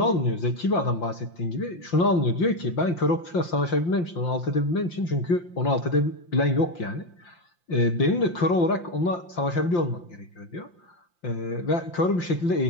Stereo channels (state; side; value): late; right; 5.8 ms